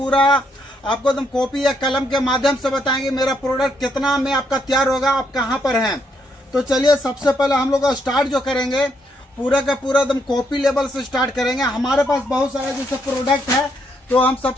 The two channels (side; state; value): both; normal; correlation 0.75